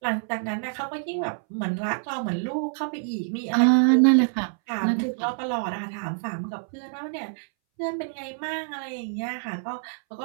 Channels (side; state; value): left; silent; 61 dB below the other